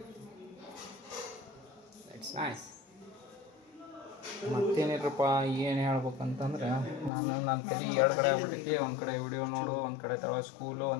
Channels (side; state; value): right; drops out; at 7.1 s